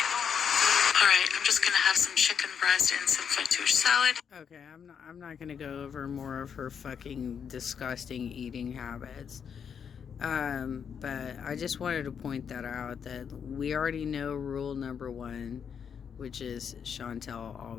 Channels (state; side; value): quieter; right; 7.3 dB